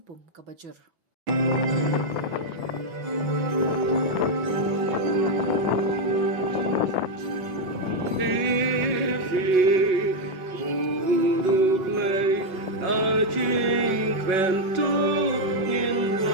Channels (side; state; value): left; late; 5.9 ms